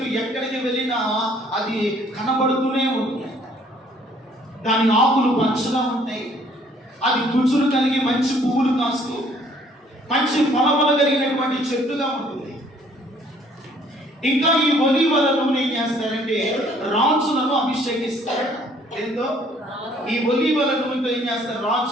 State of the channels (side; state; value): both; normal; correlation 0.60